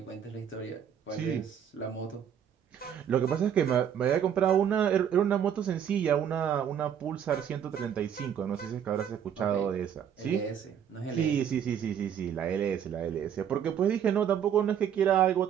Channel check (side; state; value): left; quieter; 8.8 dB